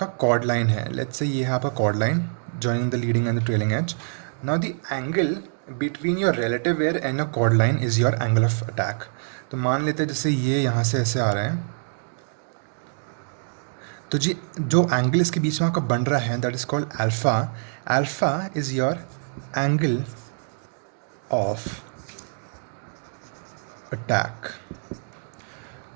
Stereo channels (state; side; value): silent; left; digital silence